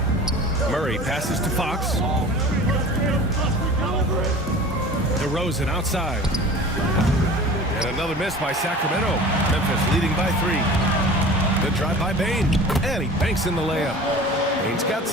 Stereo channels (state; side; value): normal; both; correlation 0.40